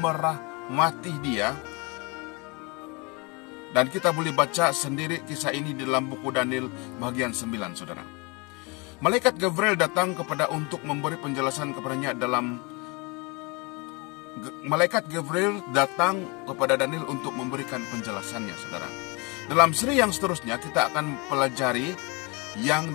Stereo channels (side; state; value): right; quieter; 29.2 dB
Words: dia, dan kita boleh baca sendiri kisah ini di dalam buku Daniel bagian 9, saudara. Malaikat Gabriel datang untuk memberi penjelasan kepadanya Malaikat Gabriel datang kepada Daniel untuk memberikan penjelasannya, saudara. Dalam seri yang seterusnya kita akan pelajari yang